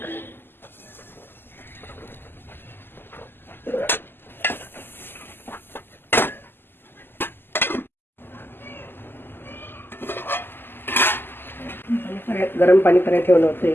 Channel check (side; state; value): right; late; 0.099 ms